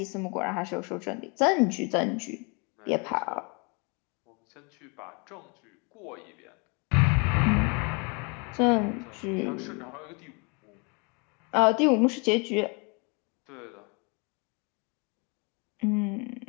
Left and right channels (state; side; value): quieter; right; 32.2 dB